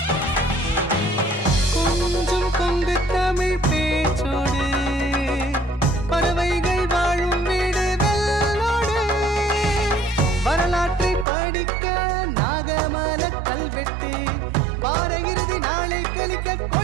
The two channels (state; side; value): drops out; left; at 11.2 s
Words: கொஞ்சம் கொங்கு தமிழ் பேச்சோடு, பறவைகள் வாழும் வீடு வெள்ளோடு. வரலாற்றை படிக்க நாகமல கல்வெட்டு, வார இறுதி நாளை கழிக்க